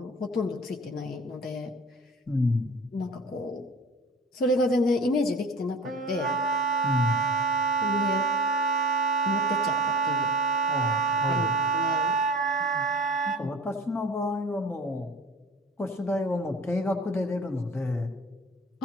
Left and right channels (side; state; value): both; normal; correlation 0.40